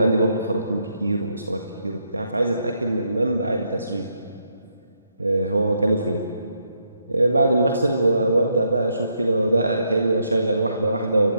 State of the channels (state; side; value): inverted; both; correlation -0.77